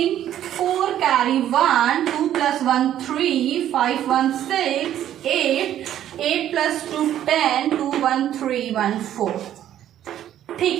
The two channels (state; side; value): quieter; left; 11.4 dB